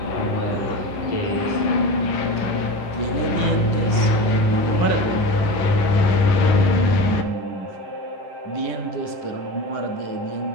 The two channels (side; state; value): right; late; 10 ms